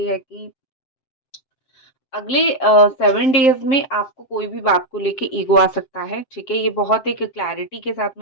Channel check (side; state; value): right; late; 7.6 ms